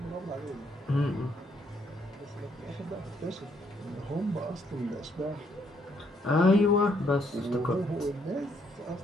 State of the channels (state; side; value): normal; both; correlation 0.71